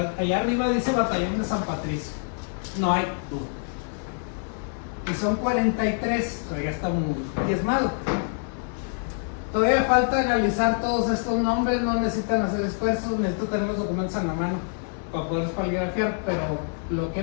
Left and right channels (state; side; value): silent; right; 61 dB below the other